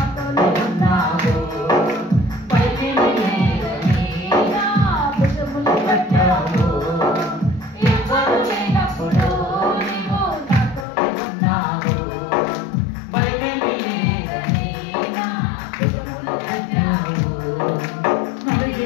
ఉన్నావు, పైకి లేదని నా భుజములు కట్టావు. ఎవరు లేనప్పుడు నీవు నాతోనే ఉన్నావు, పైకి లేదని నా భుజములు కట్టావు.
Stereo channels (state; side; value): drops out; right; at 10.9 s